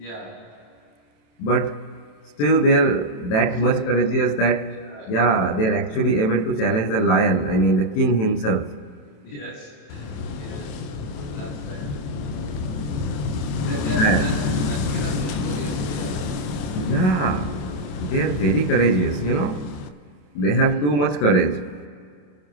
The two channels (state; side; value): late; right; 27 ms